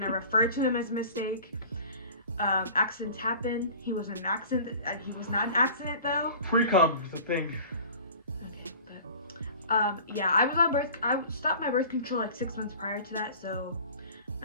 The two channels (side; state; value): both; inverted; correlation -0.43